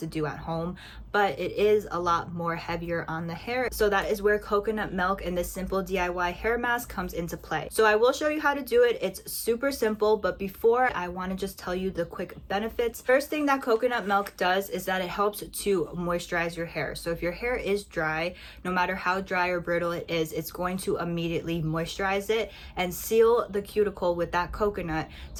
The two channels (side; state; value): both; identical; correlation 1.00